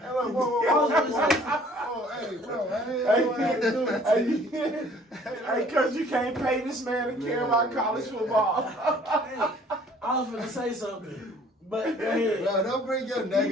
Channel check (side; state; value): both; normal; correlation 0.55